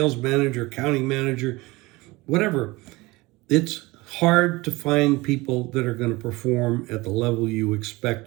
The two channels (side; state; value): left; quieter; 22.0 dB